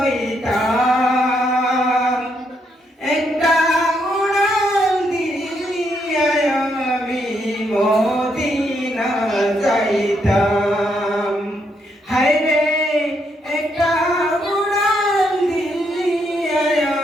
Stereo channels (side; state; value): both; normal; correlation 0.76